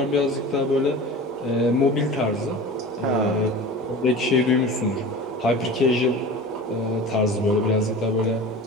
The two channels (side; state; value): both; normal; correlation 0.35